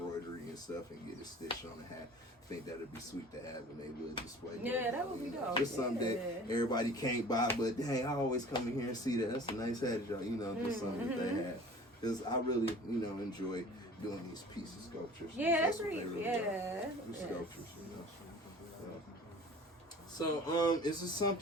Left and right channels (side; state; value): both; normal; correlation 0.44